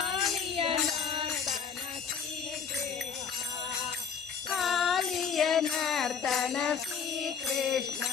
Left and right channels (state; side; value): quieter; right; 6.3 dB